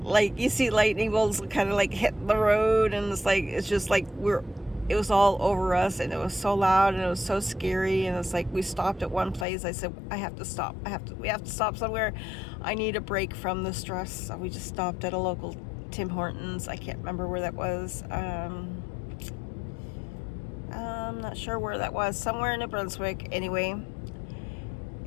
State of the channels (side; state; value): right; drops out; at 9.5 s